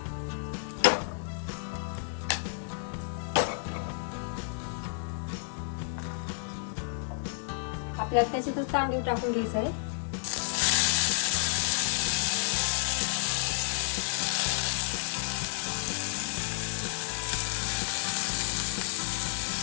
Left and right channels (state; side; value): silent; right; digital silence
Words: आपल्याला त्याच्यातच तांदूळ टाकून घ्यायचं आहे.